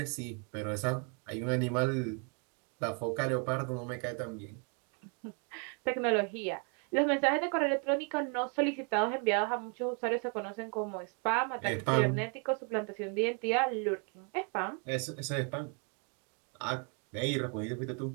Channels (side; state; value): left; quieter; 37.9 dB